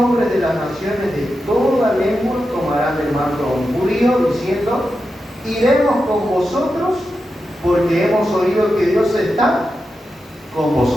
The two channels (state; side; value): normal; both; correlation 0.89